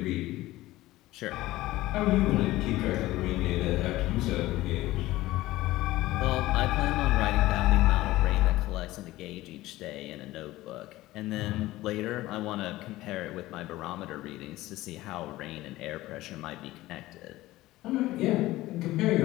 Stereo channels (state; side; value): quieter; right; 17.2 dB